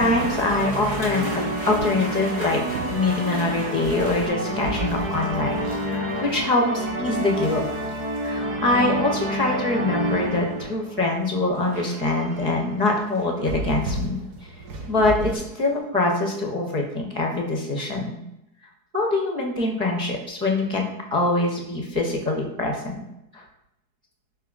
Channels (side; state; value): left; late; 4.7 ms